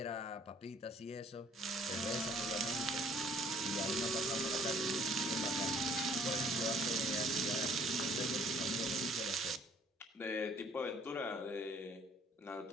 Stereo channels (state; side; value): normal; both; correlation 0.59